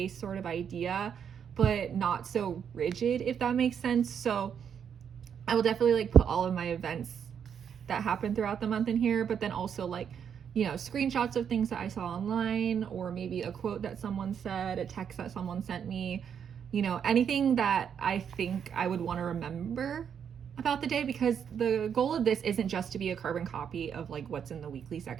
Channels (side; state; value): left; quieter; 7.9 dB